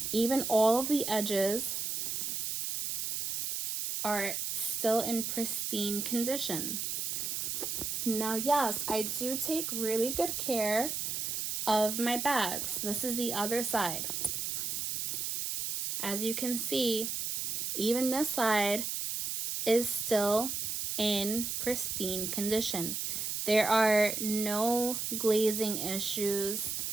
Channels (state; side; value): noise; right; hiss, 2 dB below the sound